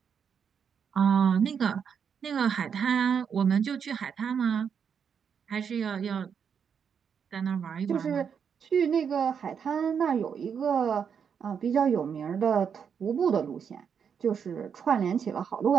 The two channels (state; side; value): quieter; left; 7.1 dB